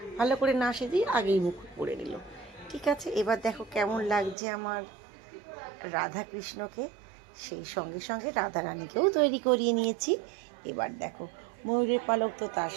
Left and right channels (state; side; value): drops out; left; at 4.4 s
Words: ভালো করে না সেজেই আগেই মুকুট পরে নিল। ঠিক আছে, এবার দেখো কেমন লাগছে আমার রাধা কৃষ্ণকে। সেই সঙ্গে সঙ্গে রাধা রানীকেও তৈরি করিয়ে নিয়েছি। এবার দেখো, ময়ূরের পালক তো তার